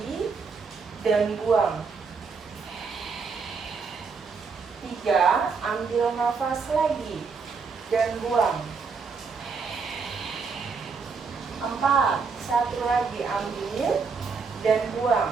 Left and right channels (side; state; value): left; quieter; 5.1 dB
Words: dan buang. 3, ambil nafas lagi dan buang. 4, satu lagi ambil dan buang.